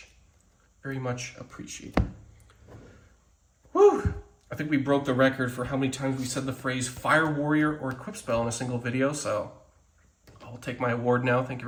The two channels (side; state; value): both; identical; correlation 1.00